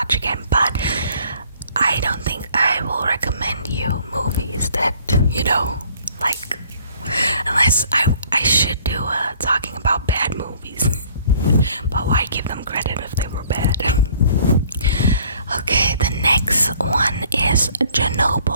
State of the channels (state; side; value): inverted; both; correlation -0.57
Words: again. But I don't think I will recommend you movies that, you know, like, unless I should do talking about bad movies. But why give them credit if they were bad? Okay, the next one is